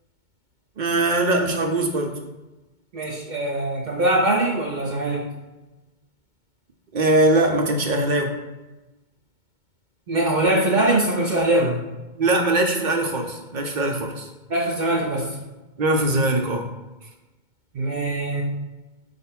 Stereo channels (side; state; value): left; late; 2.2 ms